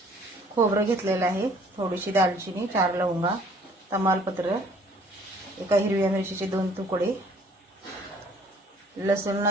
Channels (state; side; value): normal; both; correlation 0.57